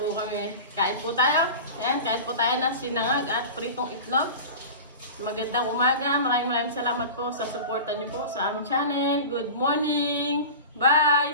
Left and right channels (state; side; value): inverted; both; correlation -0.32